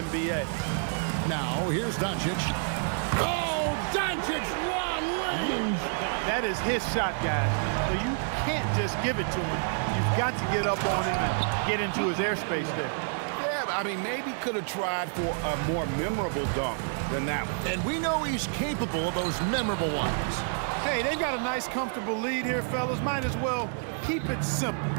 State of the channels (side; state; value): left; silent; 59 dB below the other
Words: NBA. Now, here's Doncic. Oh, Doncic, long range. That is his shot, guys. So you can't just give it to him. You've got to get up on him and get into his airspace there. Yeah, I mean, maybe could have tried for a more memorable dunk than that one. And we know he's capable of those memorable ones. Hey, they've got a nice, comfortable lead here, fellas. Might as well keep it simple.